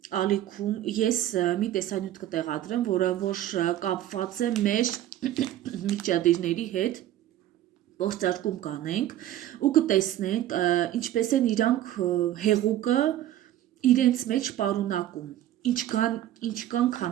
ալիքում ես մի տեսանյութ կտեղադրեմ, որը որ կապված է մեր միջադիրների հետ, փորձարկում կանենք ու կտեսնենք ինչպես են իրանք հեղուկը իրենց մեջ պարունակում, ինչքան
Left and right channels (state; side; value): quieter; left; 12.8 dB